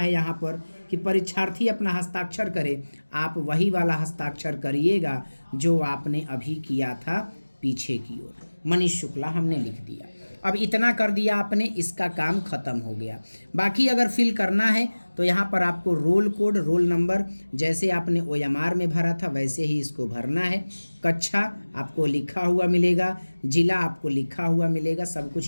यहाँ पर कि परीक्षार्थी अपना हस्ताक्षर करे। आप वही वाला हस्ताक्षर करिएगा जो आपने अभी किया था पीछे की ओर। मनीष शुक्ला हमने लिख दिया। अब इतना कर दिया आपने, इसका काम खत्म हो गया। बाकी अगर फिल करना है तो यहाँ पर आपको रोल कोड, रोल नंबर जैसे आपने ओएमआर में भरा था वैसे ही इसको भरना है। कक्षा आपको लिखा हुआ मिलेगा, जिला आपको लिखा हुआ मिलेगा, सब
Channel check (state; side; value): inverted; both; correlation -1.00